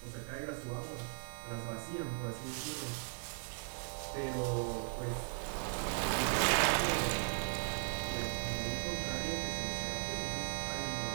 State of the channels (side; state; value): left; silent; 52 dB below the other